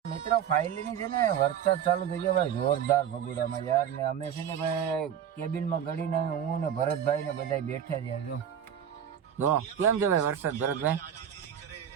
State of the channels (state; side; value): quieter; left; 9.0 dB